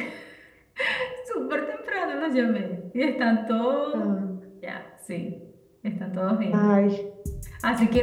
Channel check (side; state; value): both; identical; correlation 1.00